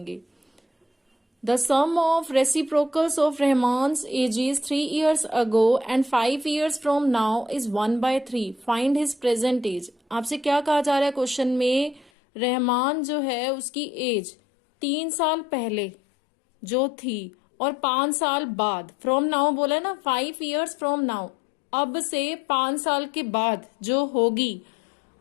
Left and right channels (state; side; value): drops out; right; at 12.1 s